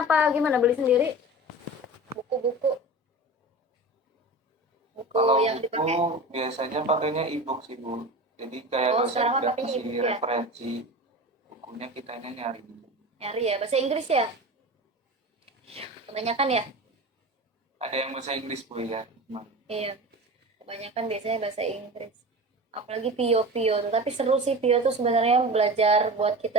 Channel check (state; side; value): normal; both; correlation 0.32